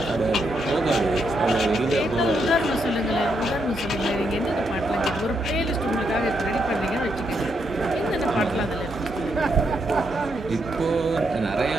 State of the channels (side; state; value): both; normal; correlation 0.79